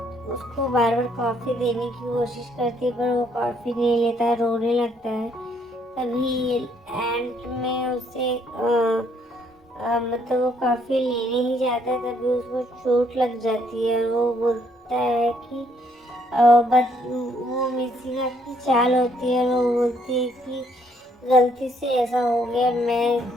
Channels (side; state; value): both; normal; correlation 0.68